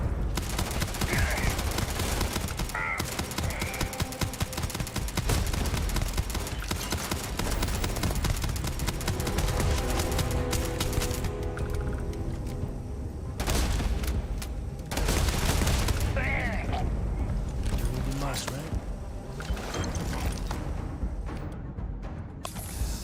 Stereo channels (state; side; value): identical; both; correlation 1.00